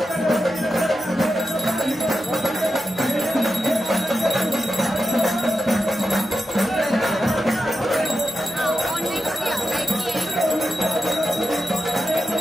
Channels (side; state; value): both; normal; correlation 0.90